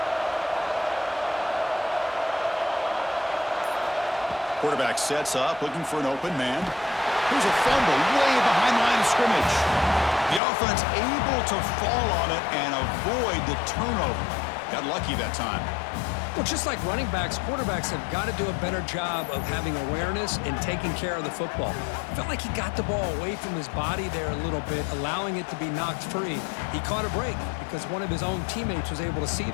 Quarterback sets up, looking for an open man. Here's a fumble way behind the line of scrimmage. The offense able to fall on it and avoid the turnover. Got lucky that time. Well, just like running backs, quarterbacks have got to do a better job of having awareness and taking care of the football. Felt like he got the ball away from his body there a little bit, allowing it to be knocked free. He caught a break because one of his own teammates was able to see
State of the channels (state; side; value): drops out; right; at 10.4 s